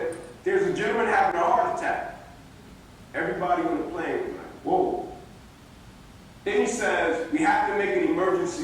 "There's a gentleman having a heart attack." Everybody on the plane was like, "Whoa." Then he says, "We have to make an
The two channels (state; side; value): identical; both; correlation 1.00